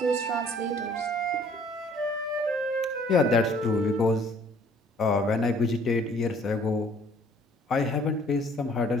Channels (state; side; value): normal; both; correlation 0.57